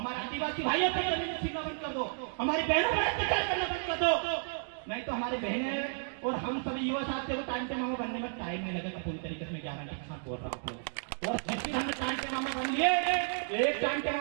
आदिवासी भाइयों पर जमीन छीनना बंद कर दो, हमारी बहनों पर अत्याचार करना बंद कर दो, नहीं तो हमारे बहनें और हम सभी युवा साथियों को टाइम पे मामा बनने में टाइम नहीं लगेगा। पूरी तरीके से मैं गारंटी के साथ बोल रहा हूँ। और जिस दिन हमने टाइम पे मामा बन लिए, एक टाइम पे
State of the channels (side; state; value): left; silent; digital silence